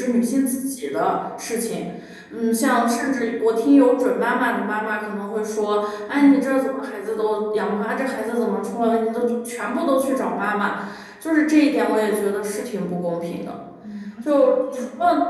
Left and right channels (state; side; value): identical; both; correlation 1.00